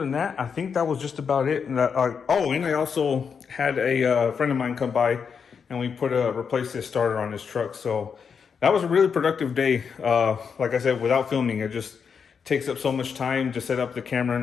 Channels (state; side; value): quieter; right; 6.3 dB